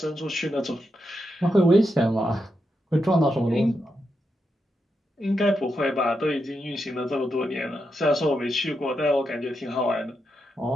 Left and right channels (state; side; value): normal; both; correlation 0.85